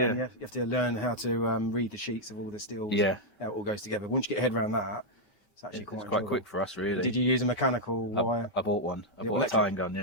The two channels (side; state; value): right; late; 5.2 ms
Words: And you have to learn how to read the sheets of all the steel. Yeah. How it all goes together. Once you get your head around that, it's actually quite quick for us, really. Did you use a mechanical wire? I bought one. I bought a tying gun,